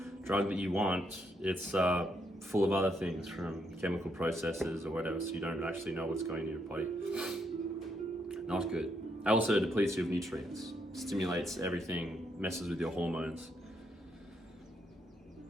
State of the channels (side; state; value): both; normal; correlation 0.77